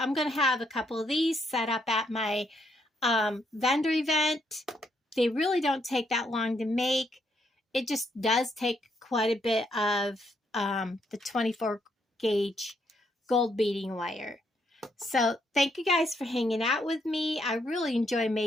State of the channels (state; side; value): normal; both; correlation 0.75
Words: going to have a couple of these set up at my vendor event. They really don't take that long to make. It just does take quite a bit of the 24 gauge gold beading wire. So thank you guys for hanging out with me. I really enjoy